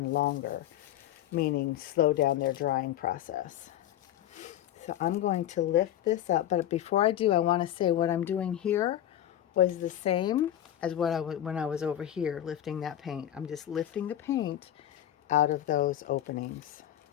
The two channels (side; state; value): right; quieter; 11.8 dB